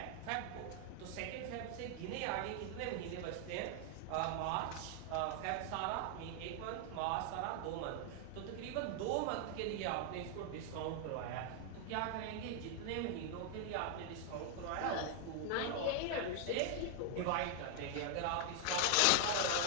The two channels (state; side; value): different; both; correlation 0.00